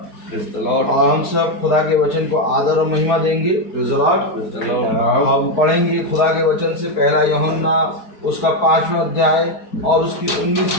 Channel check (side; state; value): right; late; 4.7 ms